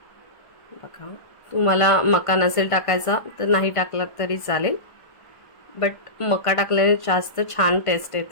बघा, तुम्हाला मका नसेल टाकायचा तर नाही टाकला तरी चालेल, बट मका टाकल्याने जास्त छान टेस्ट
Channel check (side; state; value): right; late; 1.5 ms